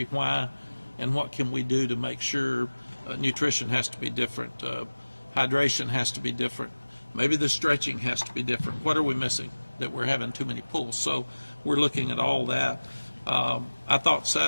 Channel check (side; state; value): both; inverted; correlation -1.00